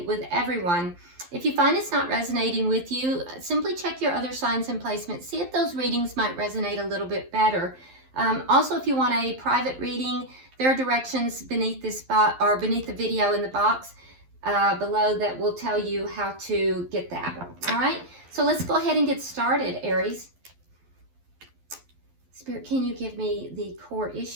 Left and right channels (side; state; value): left; late; 11 ms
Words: with everyone. If you find it's not resonating with you, simply check your other signs and placements. See if those readings might resonate a little bit better. Also, if you want a private reading, there are directions beneath this spot or beneath the video in the box below that will tell you how to get that. All right, so let's go ahead and get started, Aries. Spirit, can you give me the core